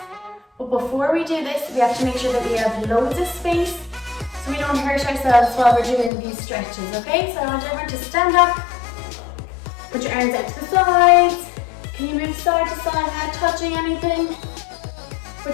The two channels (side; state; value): right; drops out; at 6.1 s